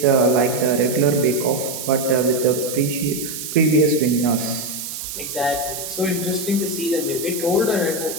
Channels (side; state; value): right; noise; hiss, 7 dB below the sound